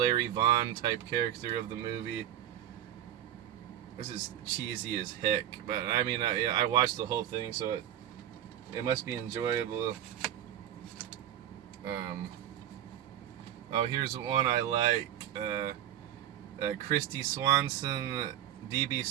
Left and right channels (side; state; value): left; quieter; 11.4 dB